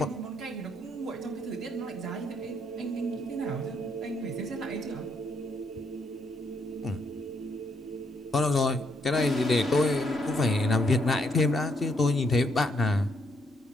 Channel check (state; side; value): normal; both; correlation 0.74